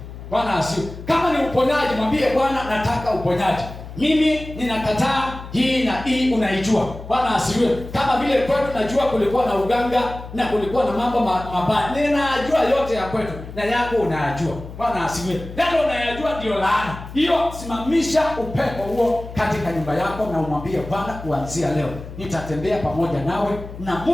Bwana asifiwe. Kama ni uponyaji, mwambie Bwana nataka uponyaji. Mimi ninakataa hii na hii, unaijua. Bwana asifiwe. Kama vile kwetu najua kulikuwa na uganga na kulikuwa na mambo mabaya. Ninajua yote ya kwetu na yako unayajua. Bwana asifiwe. Ndio unayajua ndio laana. Hiyo simamisha upepo huo katika nyumba yako na umwambie Bwana, kuanzia leo nitatembea pamoja nawe na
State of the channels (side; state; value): left; noise; hum, 13 dB below the sound